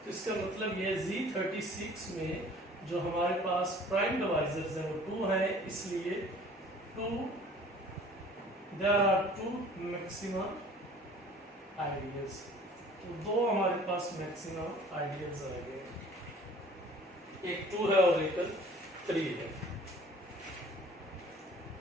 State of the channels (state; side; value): normal; both; correlation 0.49